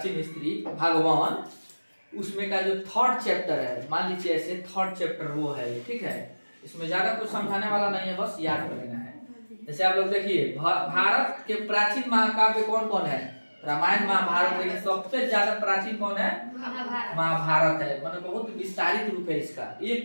हिस्ट्री भगवान, उसमें का जो थर्ड चैप्टर है, मान लीजिए ऐसे थर्ड चैप्टर वो है, ठीक है। इसमें ज्यादा कुछ समझाने वाला नहीं है, बस याद कर लेना है। जैसे आप लोग देखिए, भारत के प्राचीन महाकाव्य कौन कौन है? रामायण महाभारत, लेकिन सबसे ज्यादा प्राचीन कौन है? महाभारत है। मतलब बहुत विस्तारित रूप है इसका,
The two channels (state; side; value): inverted; both; correlation -1.00